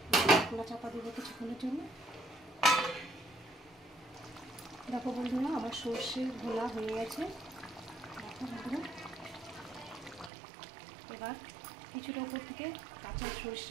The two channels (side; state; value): left; drops out; at 10.3 s